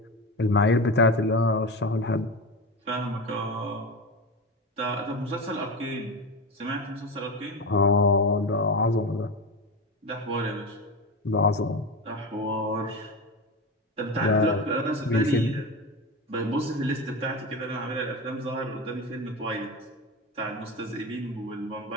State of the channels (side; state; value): both; normal; correlation 0.23